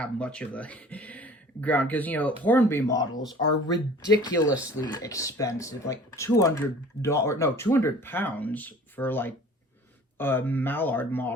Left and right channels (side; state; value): both; normal; correlation 0.47